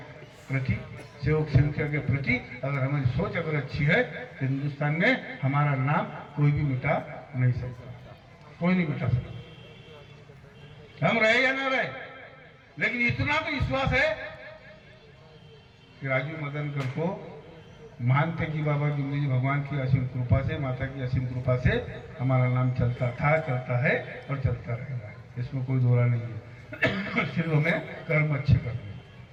प्रति, सेवक सेविका के प्रति अगर हमारी सोच अगर अच्छी है तो हिंदुस्तान में हमारा नाम कोई भी मिटा नहीं सकता, कोई नहीं मिटा सकता। हम रहे या ना रहे, लेकिन इतना तो विश्वास है कि राजू मदनकर को मानते कि बाबा जिंदगी भगवान की असीम कृपा से, माता की असीम कृपा से हमारा नाम चलता था, चलता है और चलता रहेगा। इसमें कोई दोहरा नहीं है। सिर्फ हमें कर्म अच्छे करने,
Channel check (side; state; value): both; identical; correlation 1.00